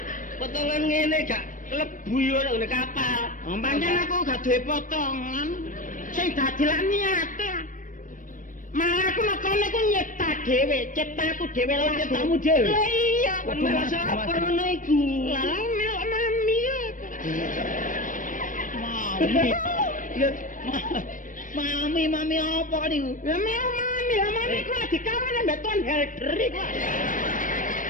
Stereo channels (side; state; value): right; late; 0.38 ms